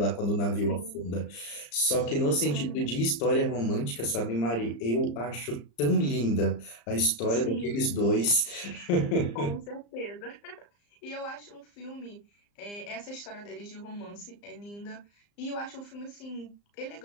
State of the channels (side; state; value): right; late; 34 ms